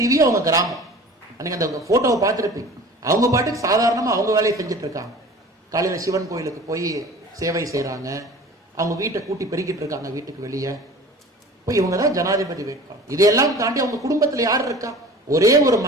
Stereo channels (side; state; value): both; normal; correlation 0.42